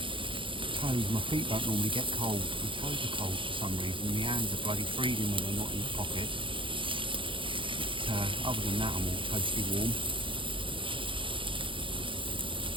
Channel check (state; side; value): late; left; 0.25 ms